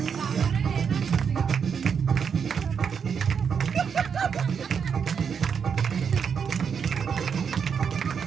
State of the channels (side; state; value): left; quieter; 6.8 dB